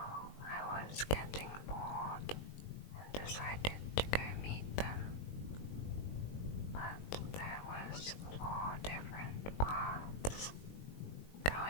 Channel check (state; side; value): late; right; 20 ms